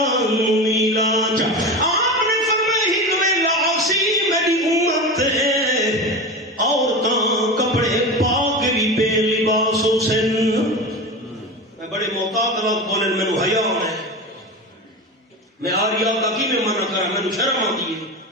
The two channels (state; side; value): normal; both; correlation 0.26